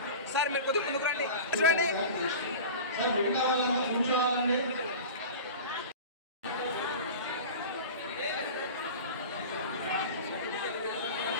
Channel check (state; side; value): inverted; both; correlation -0.34